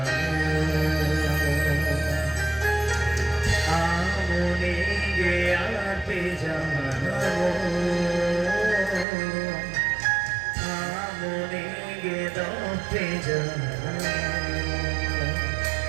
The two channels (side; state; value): left; drops out; at 9.1 s